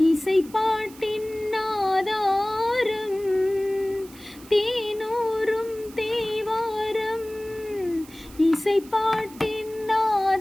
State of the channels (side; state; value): right; noise; hiss, 21 dB below the sound